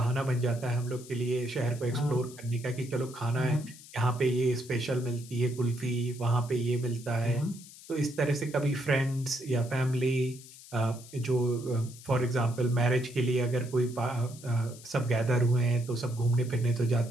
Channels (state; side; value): noise; left; hiss, 18 dB below the sound